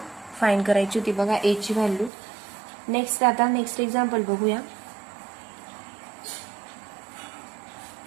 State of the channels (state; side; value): drops out; left; at 2.1 s